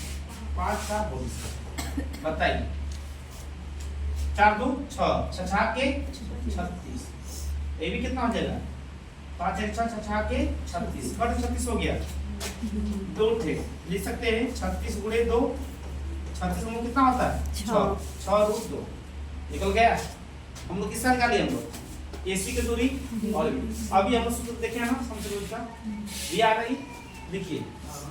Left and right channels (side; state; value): both; identical; correlation 1.00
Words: का होल स्क्वायर। बताइए 4 2 6 6 के 36, ये भी कितना हो जाएगा 5 1 6 6 के 36 कट 36 हो गया, 2 थे लिख सकते हैं 36 गुणे 2 36 में कितना होता है 6 रूट 2 निकल गया। हम लोग किसका निकाले, हम लोग AC की दूरी और अभी हम लोग सूत्र देखे ना संकेत का ये आ गई, देखिए